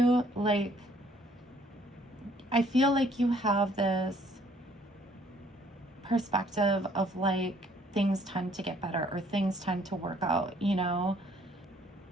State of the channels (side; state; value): both; normal; correlation 0.62